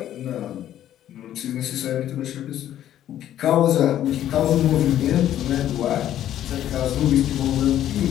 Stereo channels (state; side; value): quieter; right; 11.7 dB